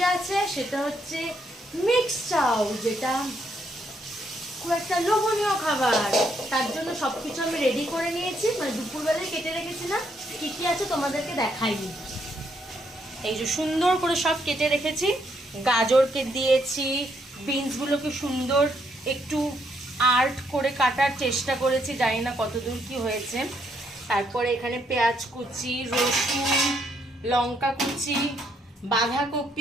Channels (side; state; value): both; normal; correlation 0.74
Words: আছে সেটা হচ্ছে মিক্স চাউ, যেটা খুব একটা লোভনীয় খাবার। তার জন্য সবকিছু আমি রেডি করে নিয়েছি, মানে দুপুরবেলায় কেটে রেখেছিলাম। কি কি আছে তোমাদেরকে দেখাইনি। এই যে সুন্দর করে সব কেটে রেখেছি, গাজরকে দিয়েছি, বিনসগুলোকে সুন্দর একটু আর্ট করে কাটার চেষ্টা করেছি, জানি না কতদূর কি হয়েছে। তারপরে এখানে পেঁয়াজ কুচি, রসুন, লঙ্কা কুচি,